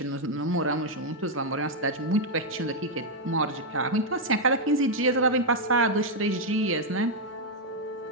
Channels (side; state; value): both; normal; correlation -0.01